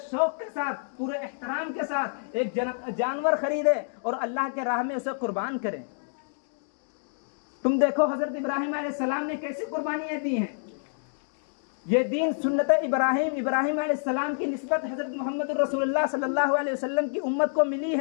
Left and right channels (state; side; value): silent; right; digital silence